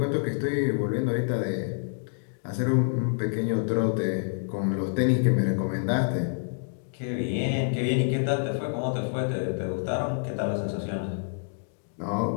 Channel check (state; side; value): silent; right; digital silence